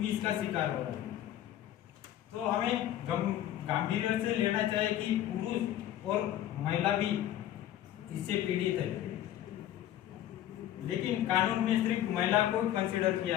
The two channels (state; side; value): quieter; right; 12.2 dB